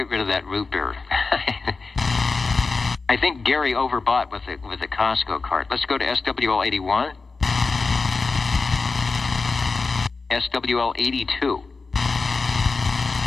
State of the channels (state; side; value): quieter; right; 4.2 dB